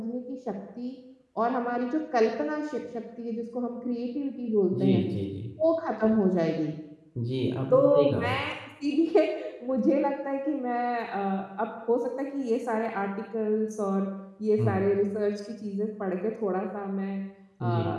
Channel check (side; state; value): both; identical; correlation 1.00